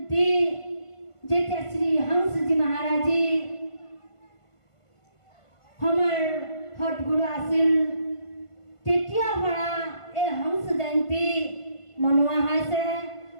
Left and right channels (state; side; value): late; right; 1.5 ms